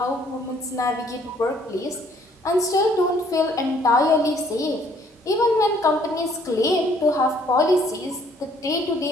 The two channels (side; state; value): both; normal; correlation 0.62